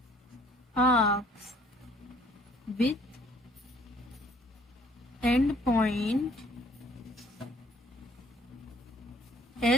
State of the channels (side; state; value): both; normal; correlation 0.59